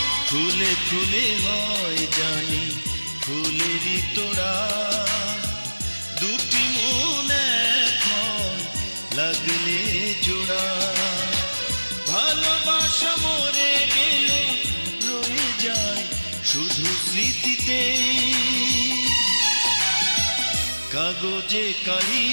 ফুলে ফুলে হয় জানি ফুলেরই তোড়া, দুটি মন এক হয় লাগলে জোড়া। ভালোবাসা মরে গেল রয়ে যায় শুধু স্মৃতিতে। কাগজে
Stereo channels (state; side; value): inverted; both; correlation -1.00